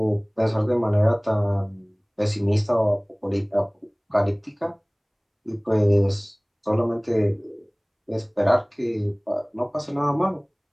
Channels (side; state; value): both; identical; correlation 1.00